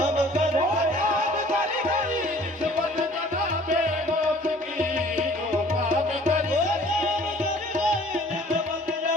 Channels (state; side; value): normal; both; correlation 0.52